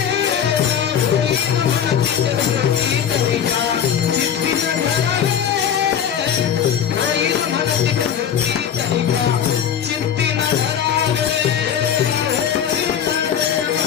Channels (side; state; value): right; quieter; 8.6 dB